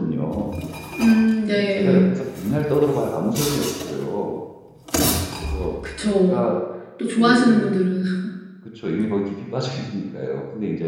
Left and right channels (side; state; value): both; identical; correlation 1.00